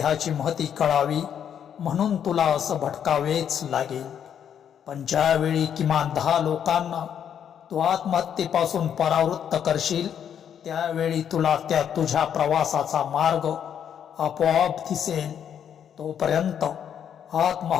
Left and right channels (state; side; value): quieter; right; 8.8 dB